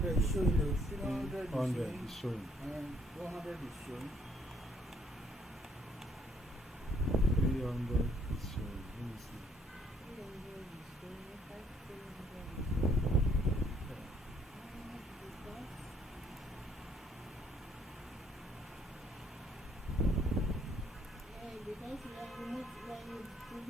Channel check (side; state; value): both; normal; correlation 0.66